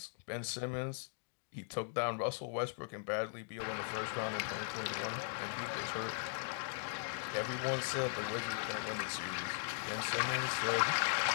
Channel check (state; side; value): silent; right; digital silence